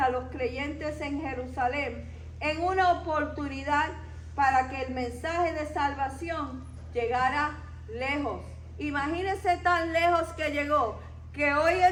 los creyentes en Jerusalén en una oportunidad para que el mensaje de salvación llegara lejos. Imagínense tan lejos que llegó, que hoy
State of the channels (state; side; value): identical; both; correlation 1.00